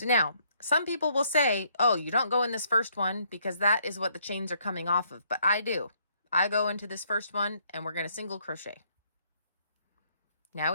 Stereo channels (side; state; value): both; inverted; correlation -0.69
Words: now, some people will say, oh, you don't go in this first one because that is what the chains are coming off of. But I do. I go into this first one and we're going to single crochet. Now